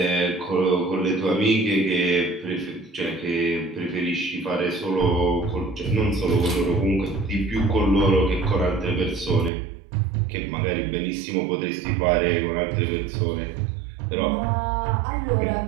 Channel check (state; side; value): drops out; left; at 9.5 s